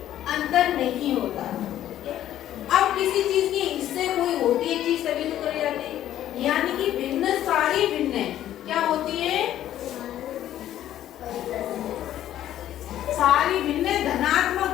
अंतर नहीं होता। अब किसी चीज के हिस्से कोई होती है चीज तभी तो करे जाते हैं, यानी कि भिन्न सारी भिन्न है। क्या होती है? सारी भिन्न धनात्मक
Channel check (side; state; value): right; quieter; 12.2 dB